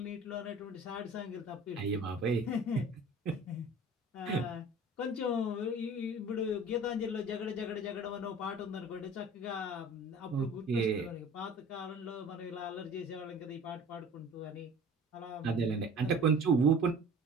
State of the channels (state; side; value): normal; both; correlation 0.43